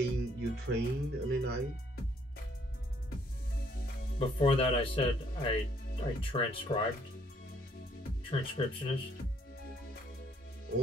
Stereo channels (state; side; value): normal; both; correlation 0.66